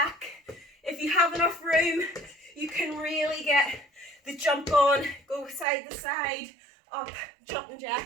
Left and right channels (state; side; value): drops out; left; at 5.7 s